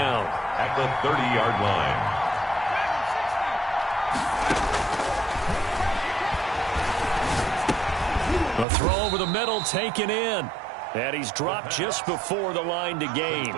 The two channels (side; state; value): left; drops out; at 8.7 s